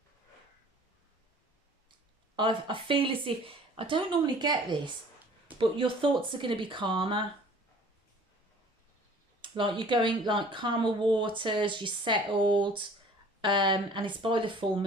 feel as if, I don't normally get this, but your thoughts are going to be calmer. Like, you're going, like, calmer waters, you're settled. And it's by the full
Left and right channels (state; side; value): normal; both; correlation 0.50